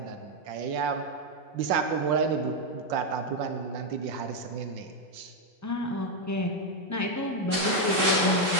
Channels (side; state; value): both; normal; correlation 0.02